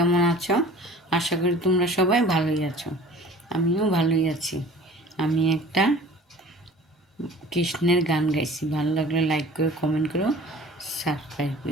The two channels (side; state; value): both; normal; correlation 0.45